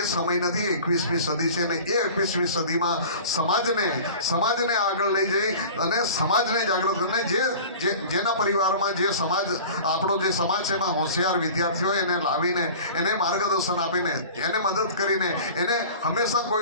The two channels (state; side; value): inverted; both; correlation -0.40